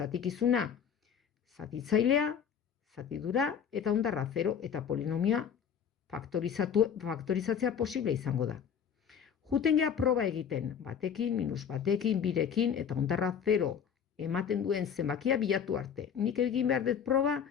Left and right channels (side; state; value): right; quieter; 7.7 dB